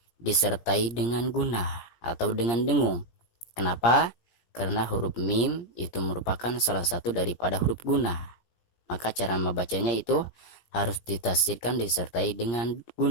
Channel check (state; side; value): late; right; 17 ms